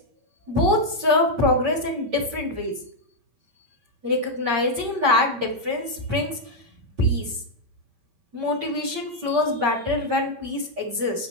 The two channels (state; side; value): late; left; 8.6 ms